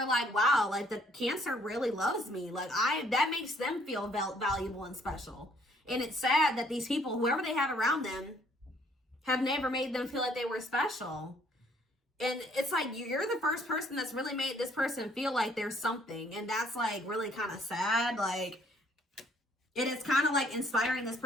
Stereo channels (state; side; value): normal; both; correlation 0.63